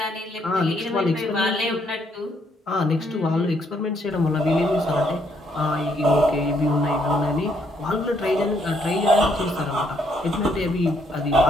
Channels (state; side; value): normal; both; correlation 0.71